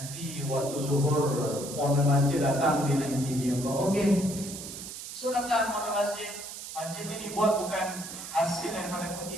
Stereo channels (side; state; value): right; noise; hiss, 10 dB below the sound